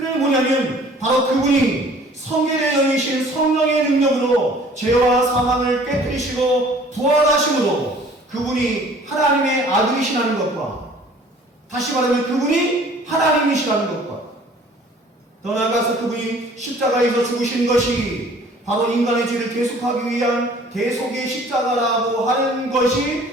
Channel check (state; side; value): normal; both; correlation 0.52